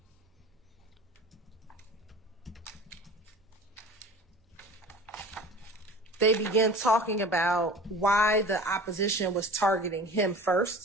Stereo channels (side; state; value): both; normal; correlation 0.40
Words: they begin talking about why the opposition was targeting him